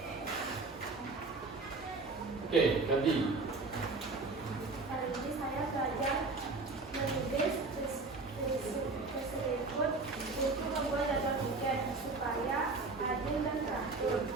Oke, jadi Hari ini saya belajar menulis presentasi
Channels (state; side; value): quieter; left; 3.7 dB